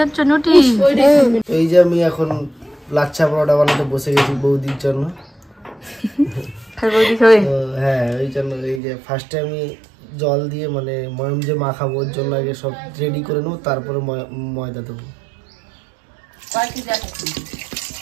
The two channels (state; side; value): drops out; left; at 8.8 s